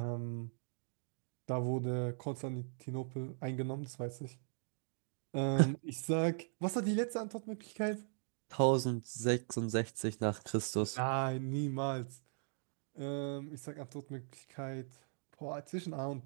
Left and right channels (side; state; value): left; silent; digital silence